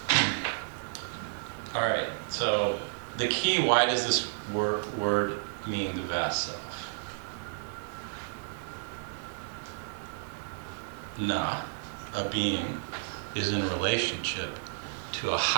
All right, so the key, why does this word mean the vast self? Na, a being, is in relationship to a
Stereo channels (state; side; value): silent; left; 57 dB below the other